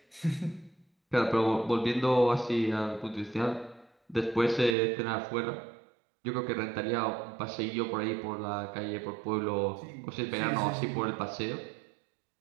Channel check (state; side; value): drops out; left; at 4.8 s